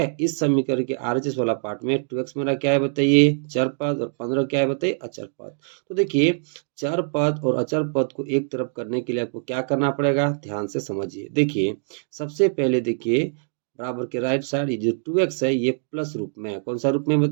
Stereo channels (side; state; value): left; silent; digital silence